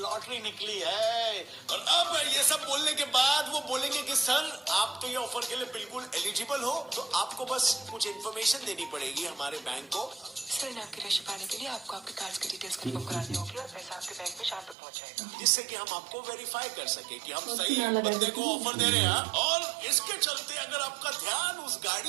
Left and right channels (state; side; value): drops out; left; at 14.8 s